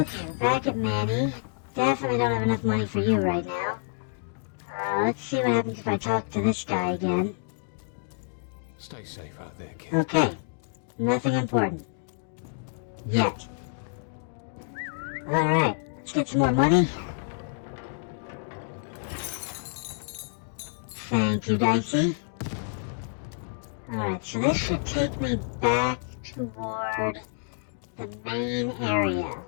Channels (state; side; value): silent; right; digital silence